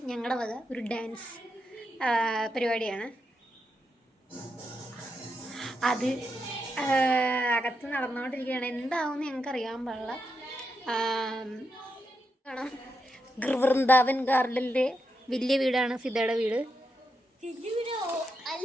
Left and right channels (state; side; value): normal; both; correlation 0.85